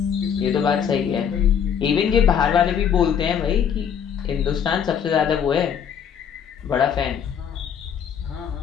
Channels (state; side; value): quieter; right; 8.0 dB